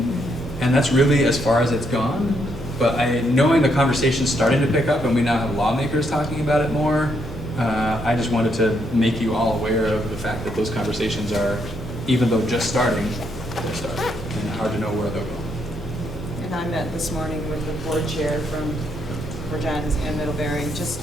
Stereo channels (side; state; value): both; normal; correlation 0.76